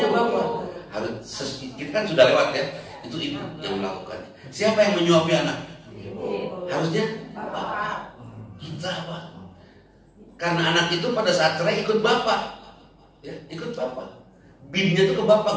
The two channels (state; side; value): identical; both; correlation 1.00